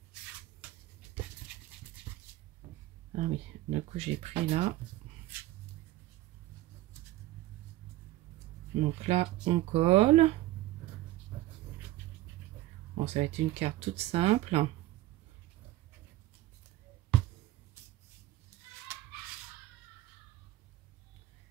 Ah oui, du coup, j'ai pris là. Donc là, on colle. Bon, ça va être une carte toute simple.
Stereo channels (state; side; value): quieter; left; 16.2 dB